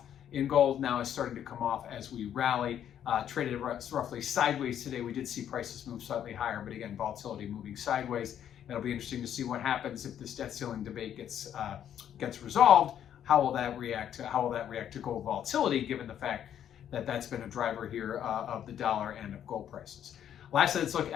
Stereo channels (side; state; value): right; quieter; 9.9 dB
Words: in gold, now is starting to come off as we rally. Traded roughly sideways today. We did see prices move slightly higher, but again, volatility moving sideways. It'll be interesting to see what happens if this debt ceiling debate gets resolved. How will that react to gold volatility, given the fact that that's been a driver here of the dollar and of gold prices. Lastly, let's look